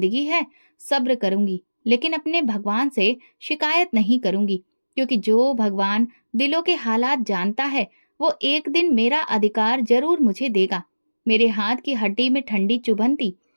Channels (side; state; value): both; inverted; correlation -1.00